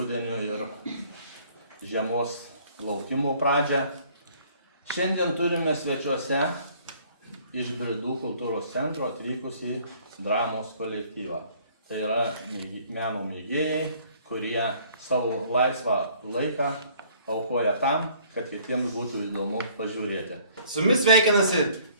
ir žiemos laukimo pradžią. Šiandien turime svečiuose iš Bridų kultūros centro atvykusį dramos kolektyvą. Tai yra meno mėgėjai, kurie savo laisvą laiką aukoja tam, kad kitiems būtų įdomu pažiūrėti. Su jumis sveikinasi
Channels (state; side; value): inverted; both; correlation -0.58